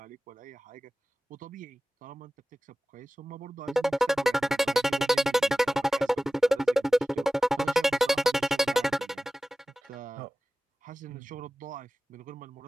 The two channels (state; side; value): normal; both; correlation 0.97